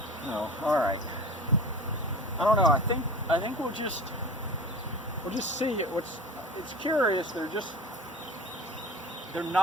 No, all right. I don't know. I think we'll just see it. It's curious. They're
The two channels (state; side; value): normal; both; correlation 0.38